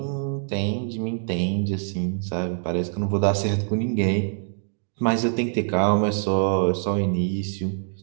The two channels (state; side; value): silent; left; digital silence